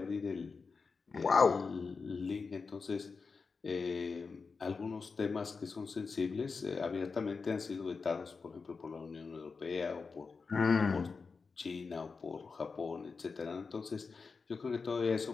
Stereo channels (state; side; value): quieter; right; 4.8 dB